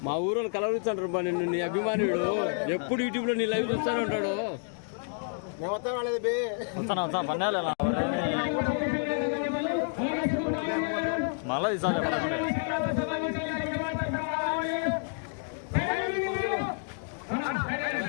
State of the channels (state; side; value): silent; right; 58 dB below the other